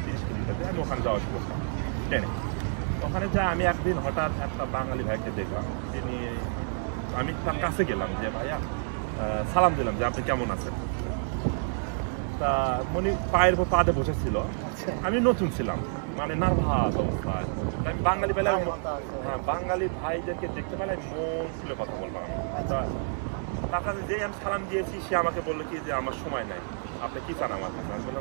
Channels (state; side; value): silent; left; digital silence